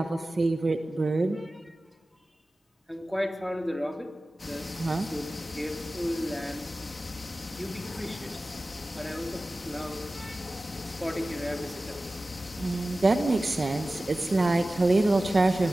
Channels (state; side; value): normal; both; correlation 0.96